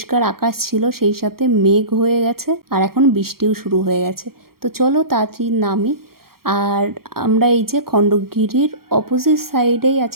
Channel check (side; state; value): left; late; 0.94 ms